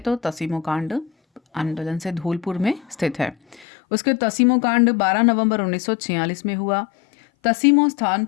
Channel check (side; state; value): right; drops out; at 3.7 s